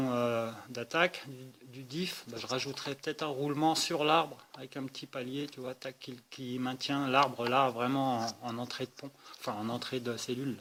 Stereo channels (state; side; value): identical; both; correlation 1.00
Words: d'attaque, du diff, bah, je rajouterai peut-être un roulement sur l'arbre avec un petit palier, tu vois, tac, qui maintient l'arbre là vraiment en entrée de pont, enfin en entrée de cellule.